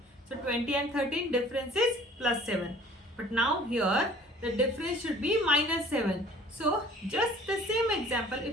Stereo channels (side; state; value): both; normal; correlation 0.51